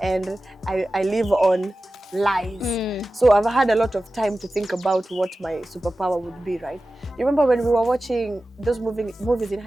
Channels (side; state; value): both; normal; correlation 0.95